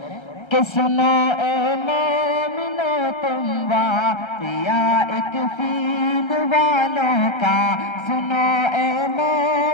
کہ سنو اے مومنو تم واقعہ ایک فیل والوں کا، سنو اے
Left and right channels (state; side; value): late; right; 1.3 ms